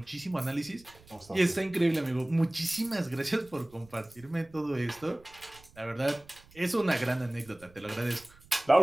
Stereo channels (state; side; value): noise; right; rumble, 25 dB below the sound